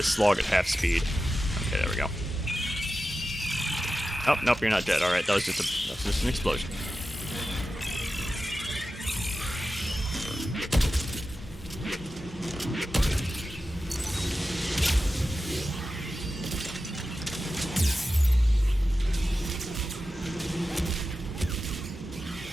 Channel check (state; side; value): normal; both; correlation 0.92